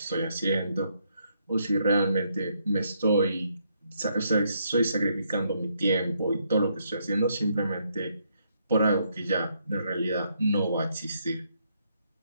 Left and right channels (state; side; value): inverted; both; correlation -0.74